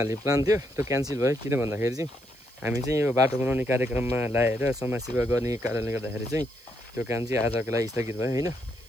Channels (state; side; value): noise; right; hiss, 27 dB below the sound